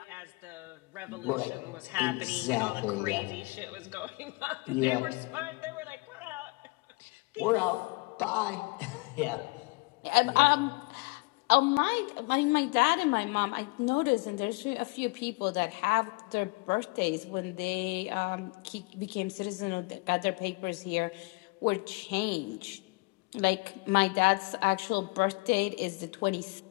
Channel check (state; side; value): quieter; right; 27.4 dB